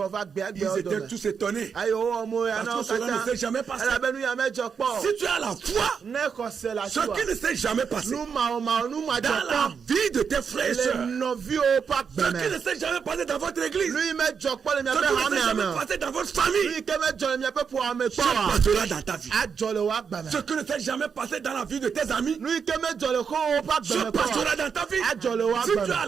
gbe agbe Ils odo étaient tous étonnés. ayo omo ya Parce na que cela ne s'est jamais passé. elabenu ya mejo kpo Si tu as la foi, ne kose la ce qui ne s'est jamais passé nu ma nu ma dans jo la kpo vie de tes frères et le sœurs, novi o pa ce qui gbeme ne s'est jamais passé dans votre église, nu mejo kpo le mi ce abe qui ne ha s'est me jamais ame passé dans votre famille, nu ke mejo le mi abe po ame se kpo wa passera dans ta vie. ajole wa gbeme Ce qui ne s'est jamais passé dans la vie de tes amis, nu ke mejo le ko o pa se gbeme passera dans ta vie. ajole wa Si tu gbeme as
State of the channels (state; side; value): quieter; left; 6.4 dB